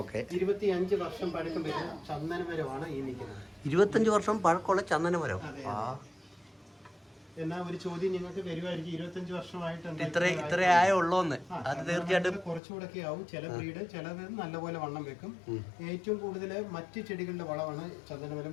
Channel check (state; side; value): drops out; right; at 12.6 s